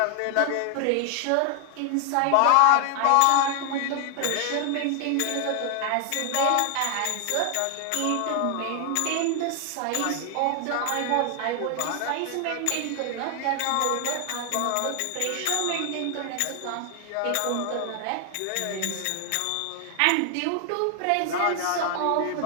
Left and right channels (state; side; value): different; both; correlation 0.00